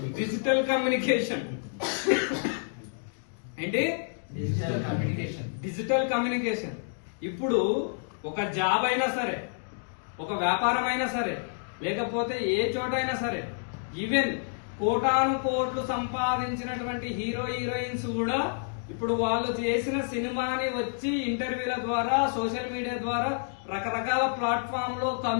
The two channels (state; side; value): silent; right; digital silence